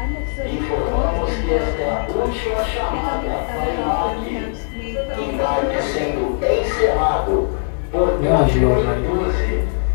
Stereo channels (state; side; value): silent; right; digital silence